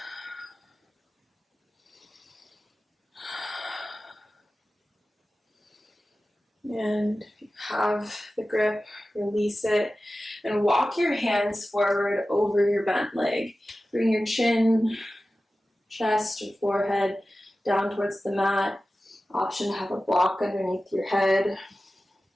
And if you have the grip, release it and walk your hands forward over your bent leg. Bring your chin, chest, or forehead down towards the mat. Option to have a block underneath your head.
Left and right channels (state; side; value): normal; both; correlation 0.95